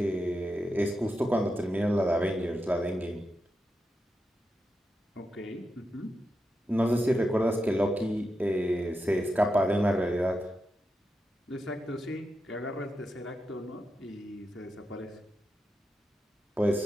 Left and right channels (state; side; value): normal; both; correlation 0.88